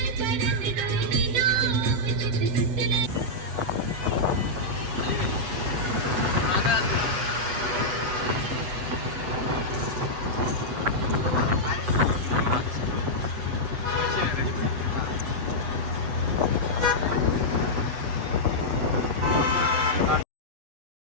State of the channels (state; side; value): late; left; 8.0 ms